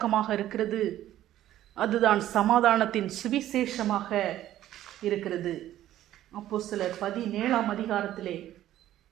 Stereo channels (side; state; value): left; quieter; 13.0 dB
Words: இருக்கிறது. அதுதான் சமாதானத்தின் சுவிசேஷமாக இருக்கிறது. அப்போஸ்தலர் 17ஆம் அதிகாரத்திலே